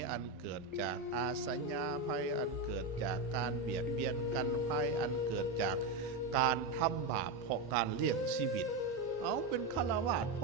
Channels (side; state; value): left; quieter; 3.3 dB